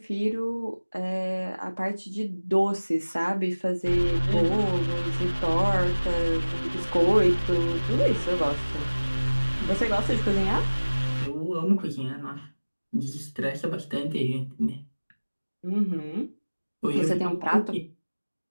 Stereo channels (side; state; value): both; inverted; correlation -1.00